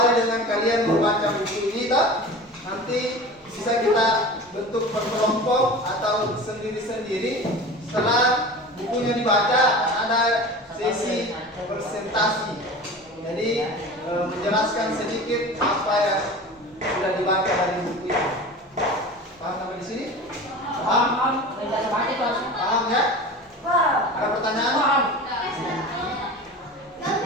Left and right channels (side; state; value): both; normal; correlation 0.35